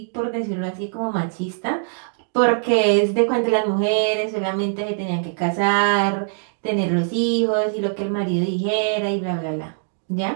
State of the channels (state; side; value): silent; left; digital silence